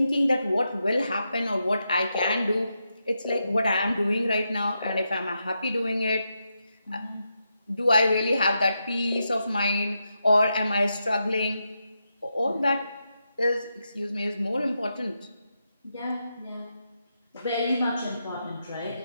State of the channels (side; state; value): both; inverted; correlation -0.85